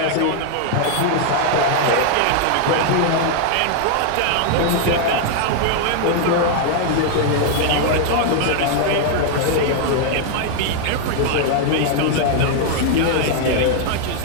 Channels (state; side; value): different; both; correlation 0.00